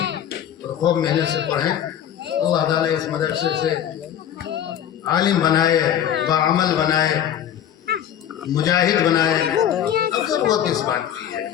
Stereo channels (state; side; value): quieter; right; 10.1 dB